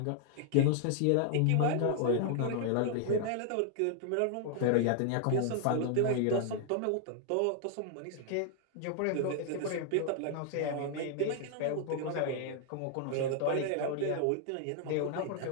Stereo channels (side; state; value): both; different; correlation 0.00